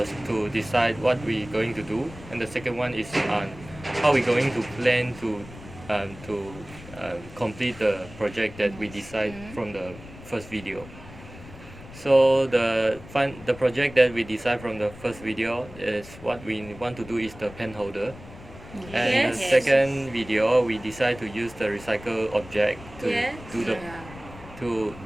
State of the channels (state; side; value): noise; left; rumble, 17 dB below the sound